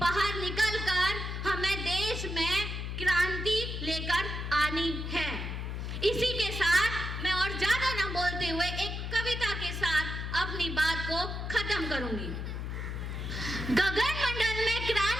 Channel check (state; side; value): noise; left; hum, 4 dB below the sound